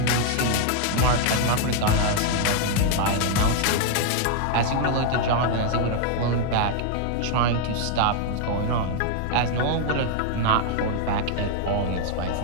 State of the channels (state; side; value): different; both; correlation 0.00